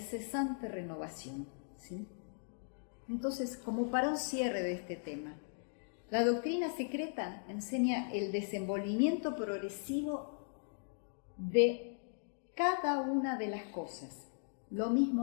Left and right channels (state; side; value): silent; right; digital silence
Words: renovación, ¿sí? Entonces, como para un cierre de este tema, la doctrina secreta enseña el desenvolvimiento progresivo de cada una de las cosas, lo